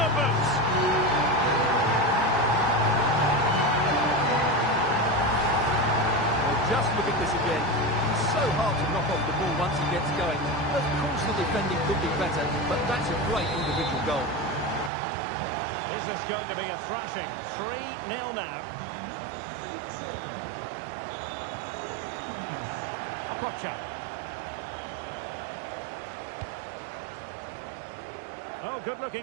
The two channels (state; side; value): drops out; left; at 14.9 s